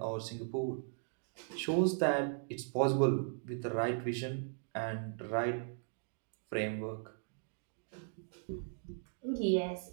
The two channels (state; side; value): silent; left; digital silence